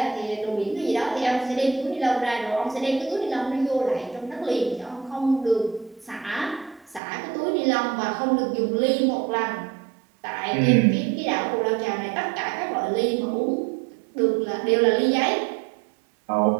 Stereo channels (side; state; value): left; drops out; at 7.0 s